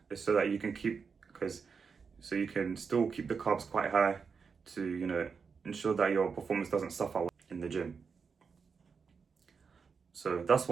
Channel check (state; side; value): quieter; left; 5.6 dB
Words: so that you can so you can still keep the carbs quite high to, ensure that your performance doesn't suffer in the gym. So that's